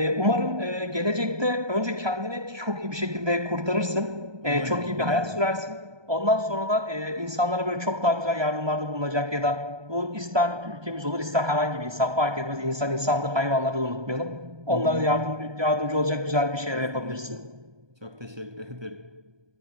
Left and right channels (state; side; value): late; left; 1.2 ms